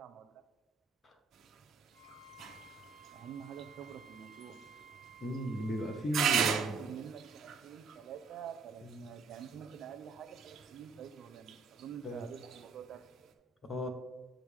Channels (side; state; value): left; quieter; 4.6 dB